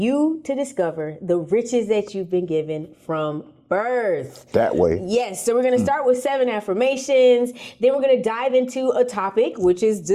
to discover the riches that you've been given from birth. That way. Yes, so we're going to start with 7 affirmations. Then we're going to dive into a topic, which is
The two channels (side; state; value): both; identical; correlation 1.00